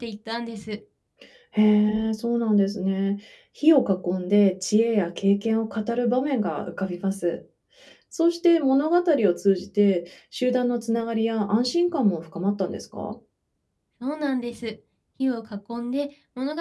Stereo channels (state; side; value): identical; both; correlation 1.00